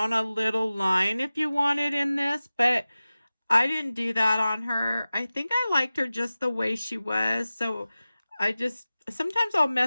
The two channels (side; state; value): both; inverted; correlation -0.96